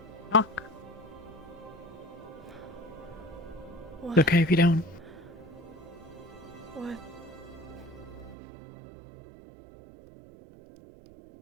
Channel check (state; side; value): drops out; left; at 8.3 s